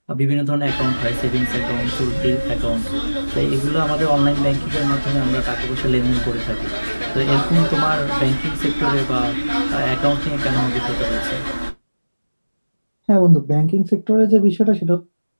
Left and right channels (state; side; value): inverted; both; correlation -1.00